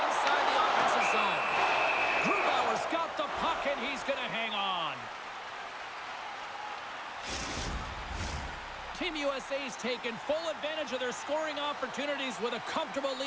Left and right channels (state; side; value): identical; both; correlation 1.00